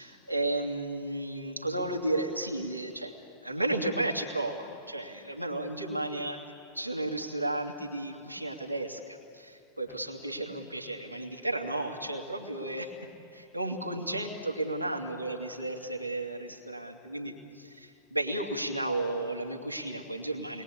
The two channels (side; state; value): both; inverted; correlation -0.70